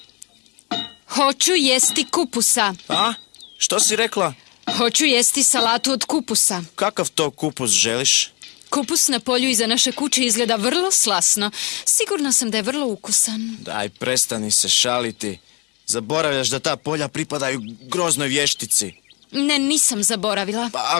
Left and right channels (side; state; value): right; quieter; 29.0 dB